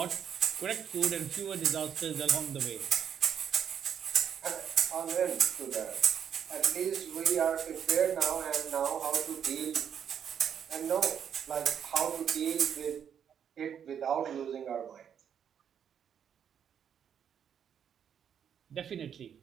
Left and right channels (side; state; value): left; quieter; 8.4 dB